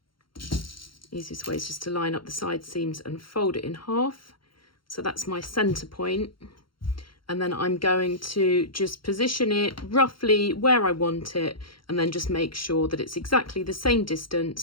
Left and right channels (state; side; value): late; right; 0.73 ms